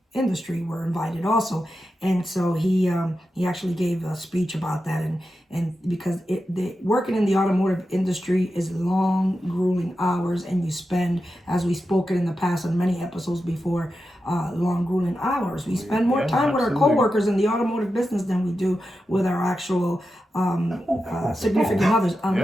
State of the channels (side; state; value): both; normal; correlation 0.90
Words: industry were invited also, and so he actually gave a speech about that, and because working in the automotive industry is long, grueling hours, and you spend, as we've spoken in the past on many episodes before, long, grueling hours. We spend more time with our coworkers in the automotive business than we do with our actual significant others,